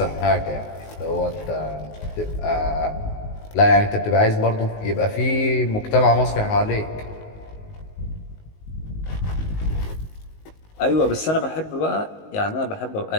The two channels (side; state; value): right; late; 19 ms